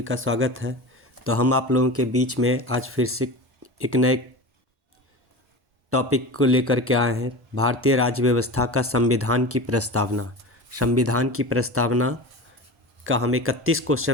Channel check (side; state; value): both; normal; correlation 0.30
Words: का स्वागत है। तो हम आप लोगों के बीच में आज फिर से एक नए टॉपिक को लेकर के आए हैं। भारतीय राज्य व्यवस्था का संविधान की प्रस्तावना। संविधान की प्रस्तावना का हम 31